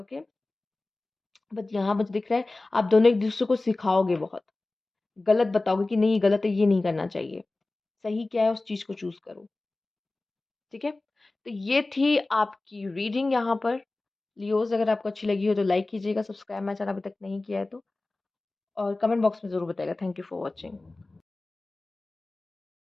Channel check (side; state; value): right; quieter; 3.1 dB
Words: बट यहाँ मुझे दिख रहा है आप दोनों एक-दूसरे को सिखाओगे बहुत, गलत बताओगे कि नहीं ये गलत है, ये नहीं करना चाहिए। सही क्या है उस चीज़ को चूज़ करो, ठीक है? तो ये थी आपकी रीडिंग यहाँ पर। लियोज़ अगर आपको अच्छी लगी हो तो लाइक कीजिएगा, सब्सक्राइब मेरा चैनल अभी तक नहीं किया है तो और कमेंट बॉक्स में ज़रूर बताइएगा। Thank you for watching.